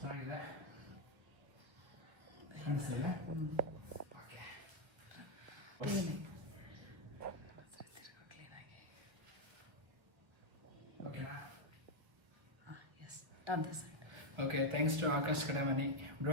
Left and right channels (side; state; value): left; late; 1.1 ms